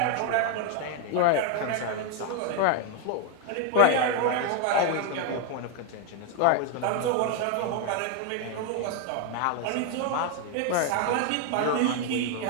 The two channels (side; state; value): both; different; correlation 0.01